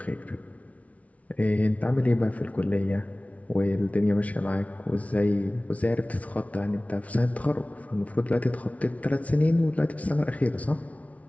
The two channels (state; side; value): late; right; 0.067 ms